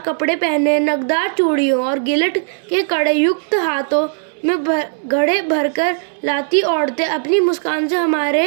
कपड़े पहने, नगदार चूड़ियों और गिलट के कड़े युक्त हाथों में घड़े भरकर लाती औरतें अपनी मुस्कान से हमारे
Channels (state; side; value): silent; left; 64 dB below the other